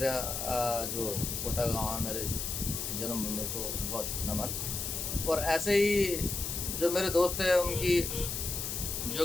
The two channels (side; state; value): left; noise; hiss, 3 dB below the sound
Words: जो कोटा गांव है, मेरे जन्मभूमि को बहुत नमन। और ऐसे ही जो मेरे दोस्त हैं, उनकी